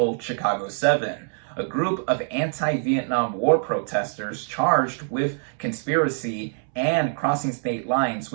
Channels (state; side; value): silent; left; 62 dB below the other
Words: Chicago 7, a group of anti-Vietnam War protesters charged with conspiracy and crossing state lines